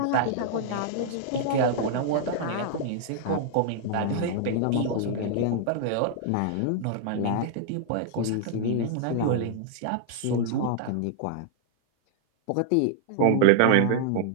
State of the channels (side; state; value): both; different; correlation -0.01